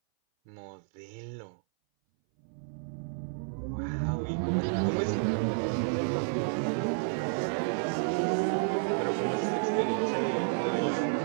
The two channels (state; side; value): silent; left; 57 dB below the other